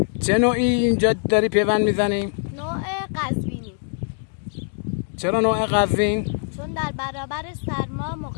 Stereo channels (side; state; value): right; silent; digital silence